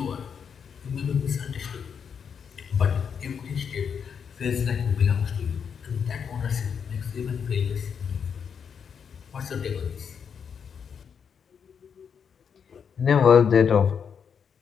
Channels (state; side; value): quieter; right; 7.0 dB